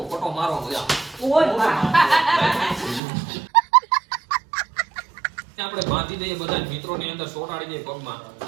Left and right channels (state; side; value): drops out; left; at 3.0 s